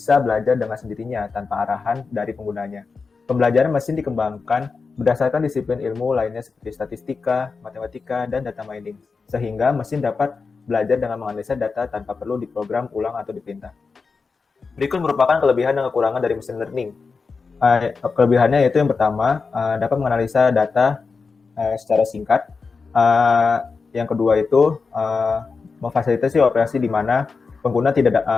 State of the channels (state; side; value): quieter; right; 4.7 dB